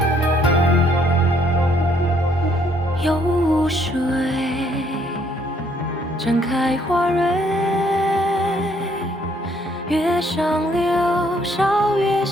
有水绽开花蕊，月上柳梢，月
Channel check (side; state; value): both; normal; correlation 0.67